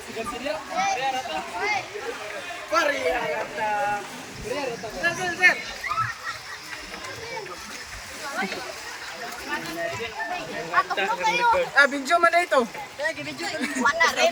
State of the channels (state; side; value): identical; both; correlation 1.00